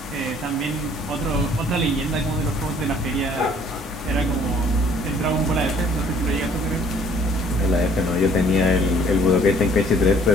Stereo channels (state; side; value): normal; both; correlation 0.58